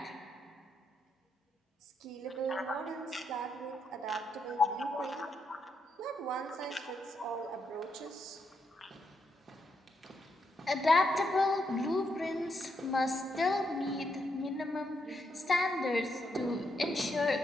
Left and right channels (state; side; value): normal; both; correlation 0.80